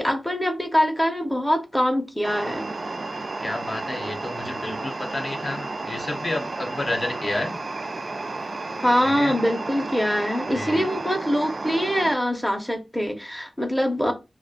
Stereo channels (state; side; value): normal; both; correlation 0.96